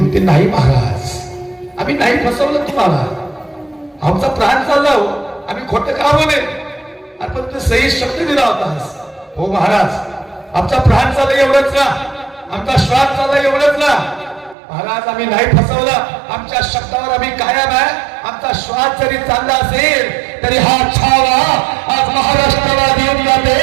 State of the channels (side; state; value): left; drops out; at 14.6 s